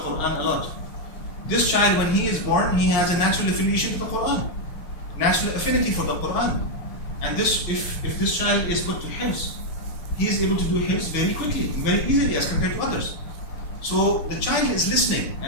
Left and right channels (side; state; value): right; late; 6.4 ms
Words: a lot, this child, when he is born, he has a natural affiliation to the Quran, natural affinity for the Quran. And if this child is put to hifz, he is able to do hifz very quickly, very easily as compared to others. So the child is listening,